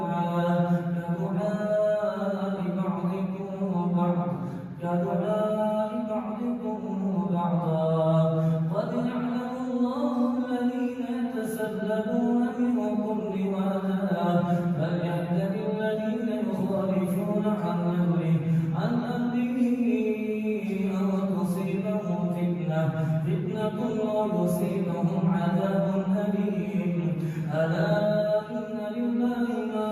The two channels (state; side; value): identical; both; correlation 1.00